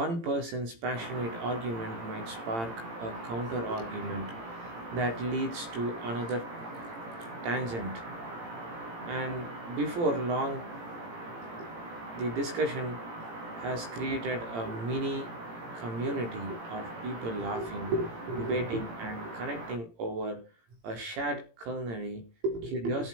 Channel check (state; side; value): late; left; 18 ms